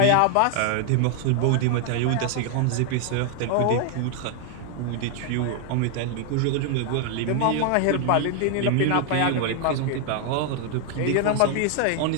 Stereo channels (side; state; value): both; different; correlation 0.00